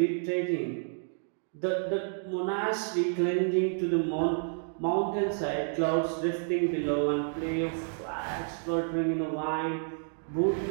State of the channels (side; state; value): left; silent; digital silence